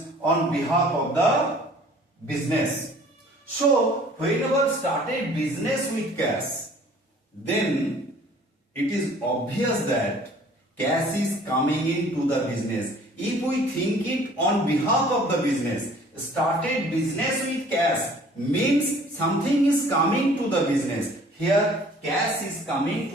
on behalf of the business. So whenever started business with cash, then it is obvious that cash is coming into the business. If we think it on behalf of the business, started business with cash means something is coming to the business. Here cash is coming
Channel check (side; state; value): both; normal; correlation 0.53